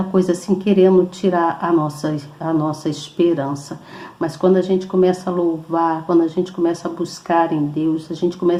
coisa assim, querendo tirar a nossa esperança. Mas quando a gente começa a louvar, quando a gente começa a buscar em Deus, a gente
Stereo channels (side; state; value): both; identical; correlation 1.00